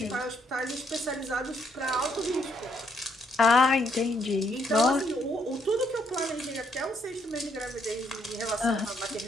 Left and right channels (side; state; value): both; normal; correlation 0.72